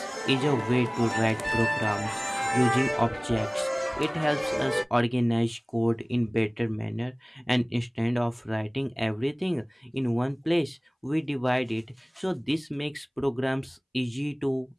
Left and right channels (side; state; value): both; identical; correlation 1.00